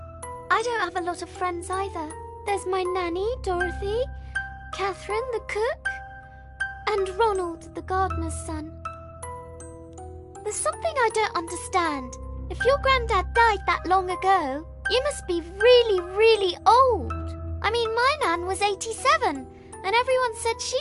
I don't have a lot of friends either. There's my nanny, Dorothy, Catherine, the cook, and Ronald, the gardener's son. There's something I don't understand. If your granddad died that long ago, you must be really, really old. I mean, my nan was 87, and everyone said she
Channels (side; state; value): both; identical; correlation 1.00